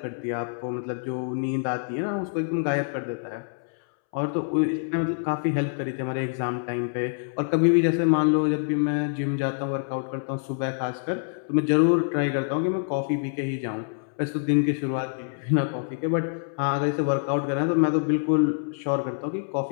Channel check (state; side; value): silent; right; 61 dB below the other